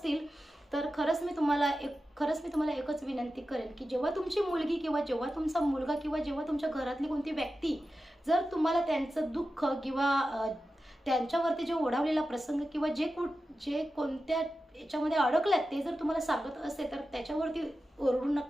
तर खरंच मी तुम्हाला एकच विनंती करेन की जेव्हा तुमची मुलगी किंवा जेव्हा तुमचा मुलगा किंवा जेव्हा तुमच्या घरातली कोणती व्यक्ती जर तुम्हाला त्यांचं दुःख किंवा त्यांच्यावरती जे ओढावलेला प्रसंग किंवा जे कोणत्या याच्यामध्ये अडकल्यात ते जर तुम्हाला सांगत असेल तर त्याच्यावरती ओरडू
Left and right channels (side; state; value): both; normal; correlation 0.93